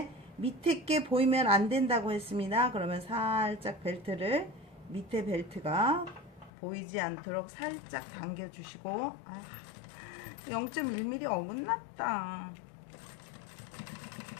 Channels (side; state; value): right; drops out; at 6.5 s